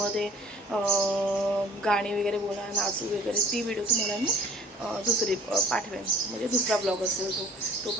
गाणी वगैरे बोला, नाचू वगैरे, ती व्हिडिओ तुम्हाला मी दुसरी पाठवेन, म्हणजे दुसरा ब्लॉग असेल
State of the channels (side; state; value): both; normal; correlation 0.50